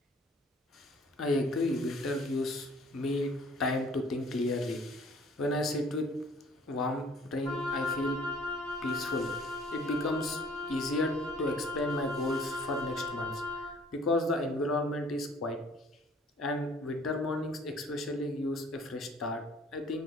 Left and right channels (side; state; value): both; normal; correlation 0.55